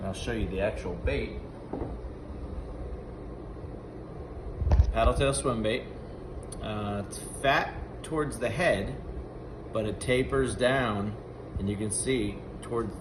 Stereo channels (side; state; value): both; identical; correlation 1.00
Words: I'll show you the actual bait. Paddle tail swim bait. It's fat towards the head, but it tapers down, and you can see towards